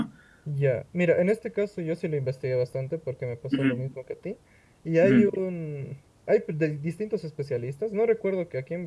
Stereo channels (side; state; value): both; identical; correlation 1.00